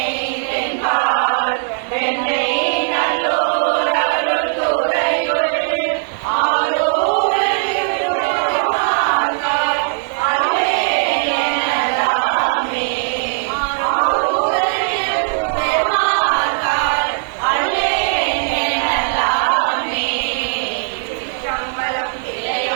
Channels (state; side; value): silent; left; 67 dB below the other